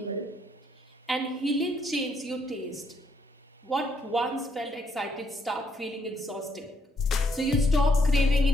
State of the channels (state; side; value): normal; both; correlation 0.72